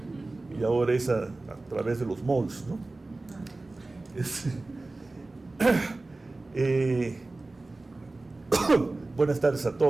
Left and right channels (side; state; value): left; quieter; 3.1 dB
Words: y ahora es a través de los malls, ¿no? Buenas tardes a